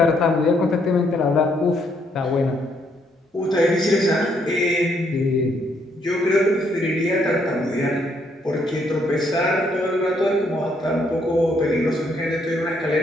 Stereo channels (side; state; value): both; normal; correlation 0.71